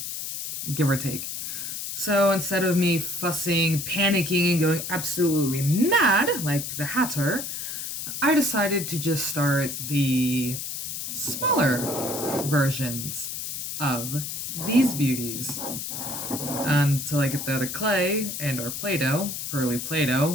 give or take. So instead of me fussing, panicking, and going absolutely mad like the Hatter, I decided to just start the smaller versions of these beauties until I get the other clay and or Play-Doh, early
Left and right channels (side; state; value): left; noise; hiss, 5 dB below the sound